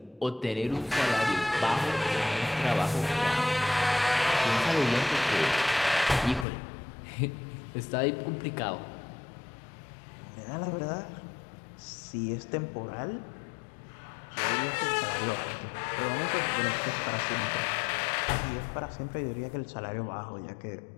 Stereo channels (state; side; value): drops out; right; at 6.5 s